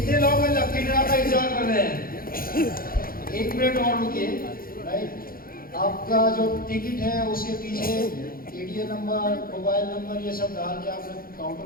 लोग हैं लकी ड्रा का इंतजार कर रहे हैं? 1 मिनट और रुकिए। राइट, आपका जो टिकट है उसके पीछे एटीएम नंबर, मोबाइल नंबर, ये सब डाल के आपने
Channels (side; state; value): right; late; 0.42 ms